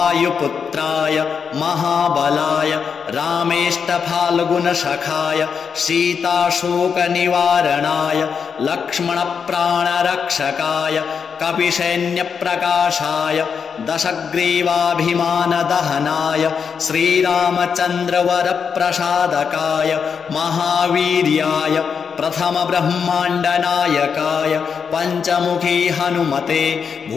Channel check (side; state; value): right; quieter; 6.4 dB